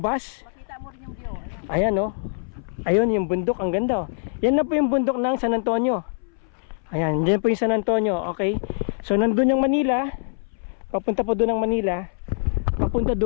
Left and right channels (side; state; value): right; silent; 63 dB below the other